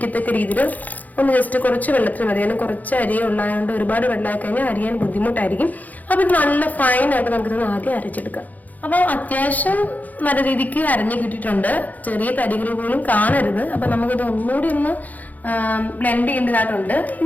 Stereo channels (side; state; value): right; late; 0.080 ms